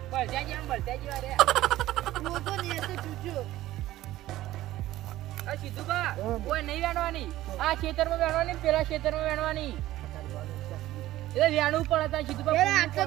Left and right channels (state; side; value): quieter; left; 15.3 dB